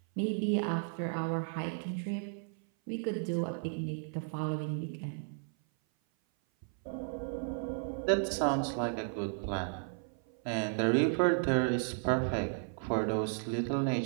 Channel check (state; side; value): silent; left; 55 dB below the other